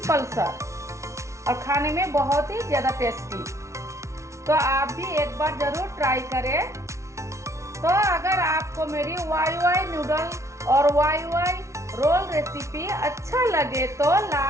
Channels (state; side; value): late; left; 0.14 ms